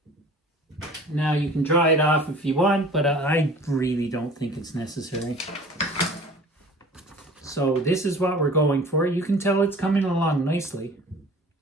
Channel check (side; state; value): both; normal; correlation 0.45